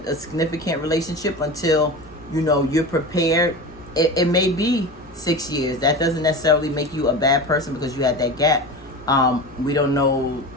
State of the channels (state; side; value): normal; both; correlation 0.29